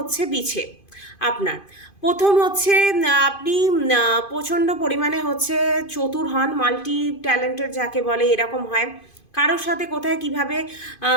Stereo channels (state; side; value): late; right; 2.5 ms